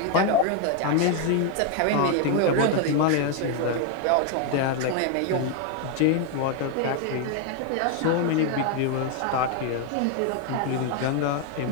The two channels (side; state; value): both; different; correlation 0.01